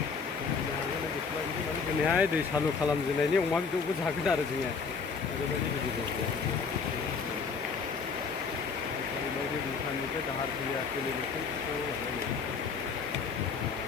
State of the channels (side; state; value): right; quieter; 5.3 dB